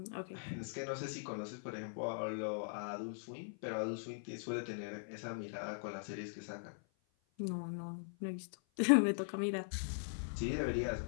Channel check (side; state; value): right; silent; 51 dB below the other